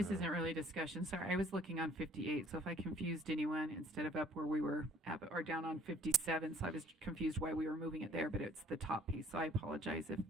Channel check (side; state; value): both; normal; correlation 0.57